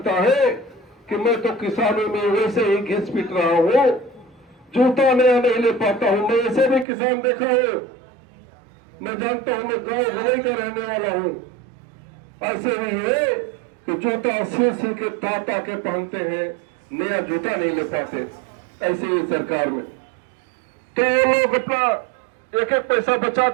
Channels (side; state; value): left; drops out; at 6.9 s